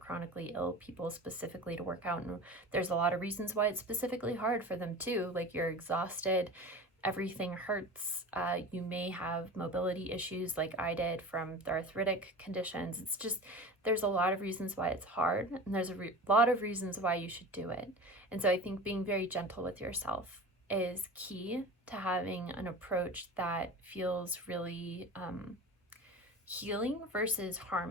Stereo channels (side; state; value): both; normal; correlation 0.34